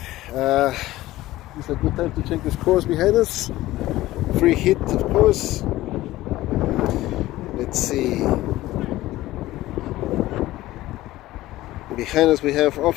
it's a good time to check the scores behind us. Free hit, of course. Let's see. Behind us we have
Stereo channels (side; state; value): right; quieter; 16.5 dB